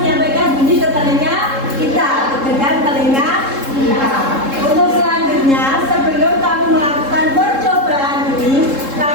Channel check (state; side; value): late; left; 3.7 ms